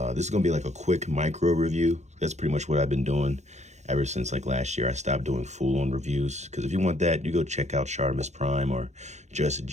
is gonna be like a quick micro review. That's pretty much what I've been doing ever since like last year. I stopped doing full-on reviews because if you want that, you go check out Sharmus Prime or Just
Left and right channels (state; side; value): late; left; 0.33 ms